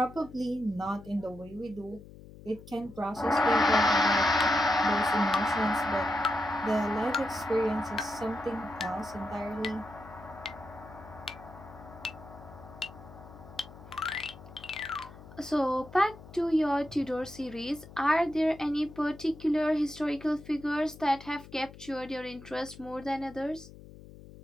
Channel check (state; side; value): noise; left; hum, 18 dB below the sound